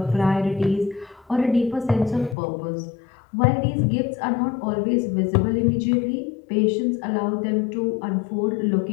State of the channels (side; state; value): right; drops out; at 2.4 s